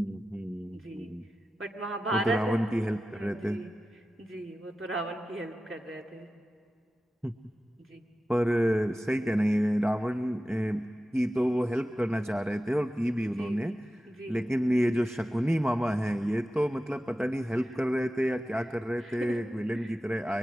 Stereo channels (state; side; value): normal; both; correlation 0.94